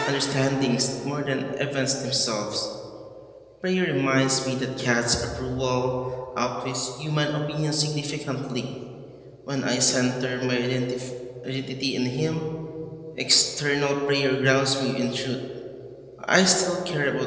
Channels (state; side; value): identical; both; correlation 1.00